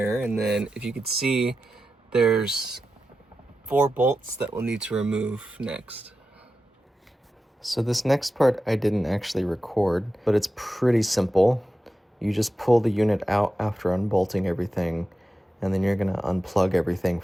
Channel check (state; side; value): normal; both; correlation 0.91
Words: and then if you could see, there's 4 bolts that we'll need to remove next. So this next part I didn't actually record, but it's pretty simple. You just pull the unit out after unbolting everything, and then you're gonna unplug everything